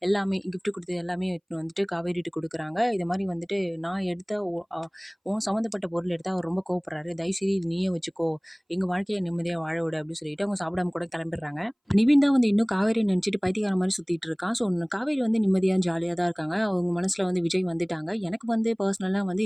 எல்லாமே கிஃப்ட் குடுத்தது எல்லாமே எடுத்துட்டு வந்துட்டு காவேரிட்ட குடுக்குறாங்க. இது மாரி வந்துட்டு நான் எடுத்த உன் சம்மந்தப்பட்ட பொருள் எடுத்தா அவர் ரொம்ப கோவப்படுறாரு. தயவுசெய்து இது நீயே வச்சுக்கோ. எங்க வாழ்க்கைய நிம்மதியா வாழ விடு அப்படின்னு சொல்லிட்டு அவங்க சாப்பிடாம கூட கிளம்பிடுறாங்க. நிவின் தான் வந்து இன்னும் காவேரிய நினைச்சுட்டு பைத்தியக்காரன் மாரி சுத்திட்டு இருக்கான். ஸோ காவேரி வந்து நிம்மதியா, ஜாலியா தான் இருக்காங்க. அவங்க மனசுல வந்து விஜய் வந்துட்டாங்க. எனக்கு வந்து பர்சனலா வந்து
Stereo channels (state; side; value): identical; both; correlation 1.00